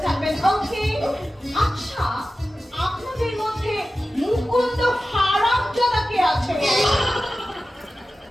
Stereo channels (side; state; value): both; normal; correlation 0.94